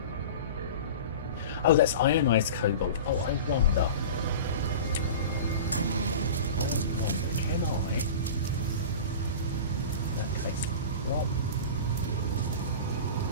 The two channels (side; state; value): both; inverted; correlation -0.33